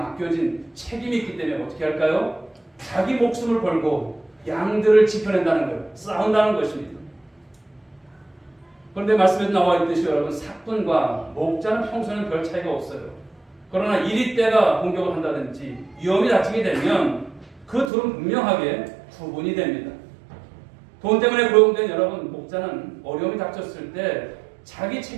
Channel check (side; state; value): left; drops out; at 17.9 s